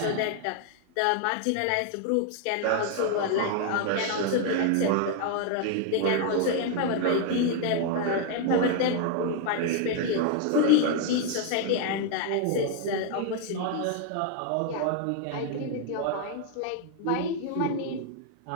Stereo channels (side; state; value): both; different; correlation 0.00